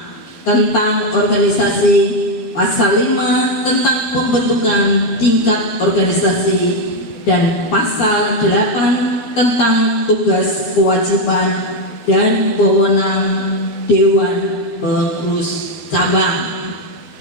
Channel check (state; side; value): late; right; 12 ms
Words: tentang organisasi, pasal 5 tentang pembentukan tingkat organisasi, dan pasal 8 tentang tugas kewajiban dan wewenang Dewan Pengurus Cabang.